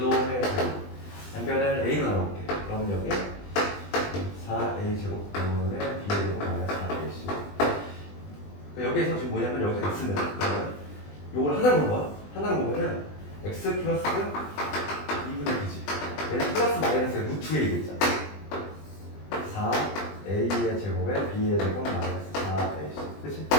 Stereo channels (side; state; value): right; late; 20 ms